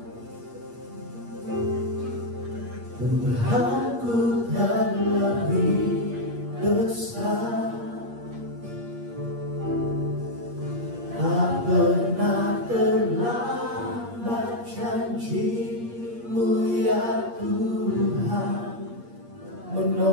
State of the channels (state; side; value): late; left; 8.5 ms